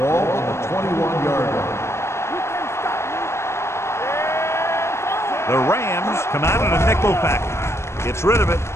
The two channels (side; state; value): right; late; 0.13 ms